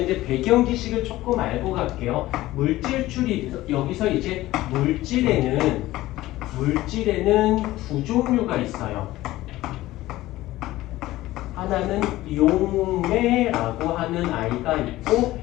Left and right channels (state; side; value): quieter; right; 16.7 dB